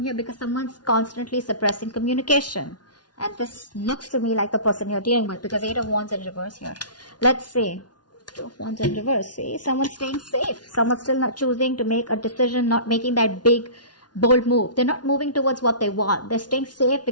here because someone's constantly suppressing communication. And this looks to me like the person you're dealing with because 8 of Wands in reverse here. Let's see. 2 of Wands in reverse. See, someone's staying safe. Someone's still not choosing to make a decision, not making that big, bold move. They're not moving towards what they want. They're staying safe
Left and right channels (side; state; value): right; late; 0.69 ms